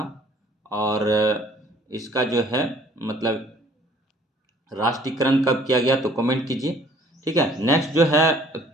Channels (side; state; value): both; normal; correlation 0.56